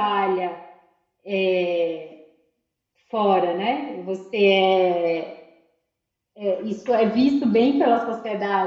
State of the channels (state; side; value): identical; both; correlation 1.00